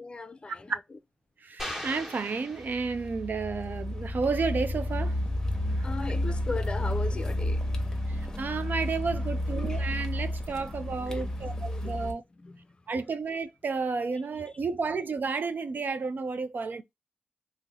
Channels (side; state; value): both; normal; correlation 0.82